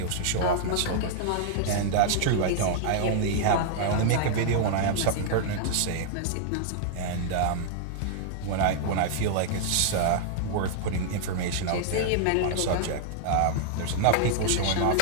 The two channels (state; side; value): different; both; correlation -0.01